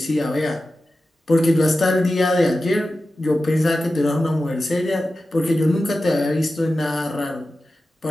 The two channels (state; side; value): normal; both; correlation 0.93